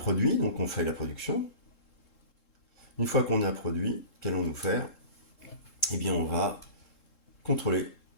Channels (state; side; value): late; right; 3.7 ms